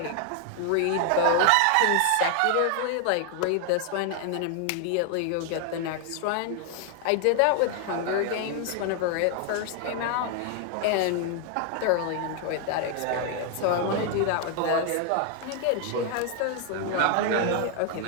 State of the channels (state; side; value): different; both; correlation 0.00